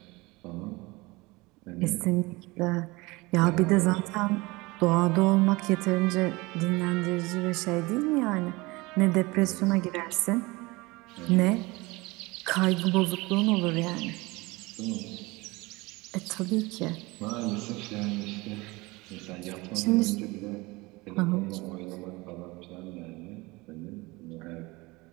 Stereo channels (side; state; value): left; quieter; 23.1 dB